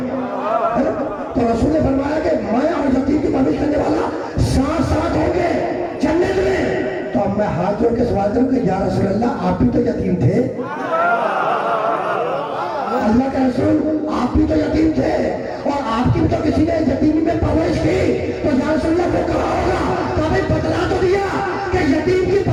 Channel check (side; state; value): both; identical; correlation 1.00